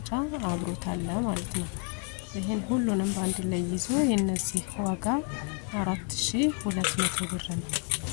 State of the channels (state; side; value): quieter; right; 38.1 dB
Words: አብሮታል ማለት ነው። ይሄን ሁሉንም በአንድ ላይ ይዞ የነዚህ ዋጋ 4200 ብር ነው።